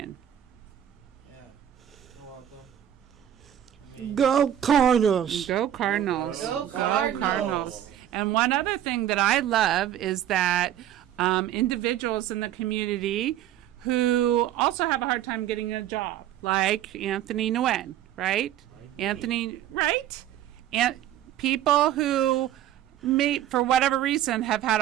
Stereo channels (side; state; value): left; quieter; 11.6 dB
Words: Yeah, you're welcome. Go Cardinals! Go Cardinals. Go Cardinals. And one other thing that I love is that individuals in the community who also have a hard time getting a job, like Anthony Nguyen, right? Anthony, right? And people who may, for whatever reason, have had